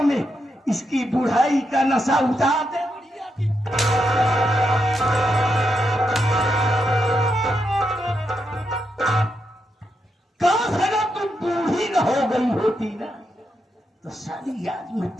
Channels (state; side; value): normal; both; correlation 0.82